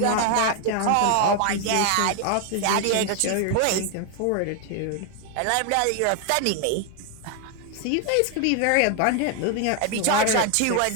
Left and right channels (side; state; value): both; different; correlation 0.01